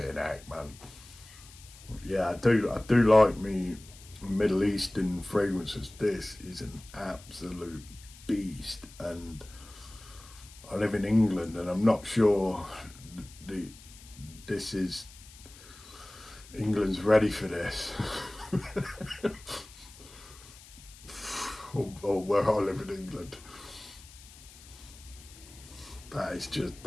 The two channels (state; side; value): noise; left; hiss, 20 dB below the sound